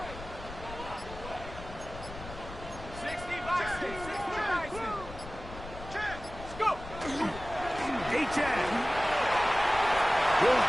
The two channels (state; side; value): noise; left; rumble, 13 dB below the sound